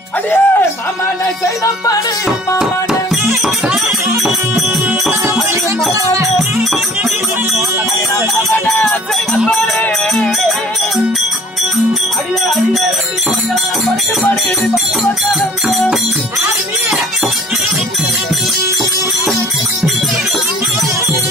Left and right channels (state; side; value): normal; both; correlation 0.50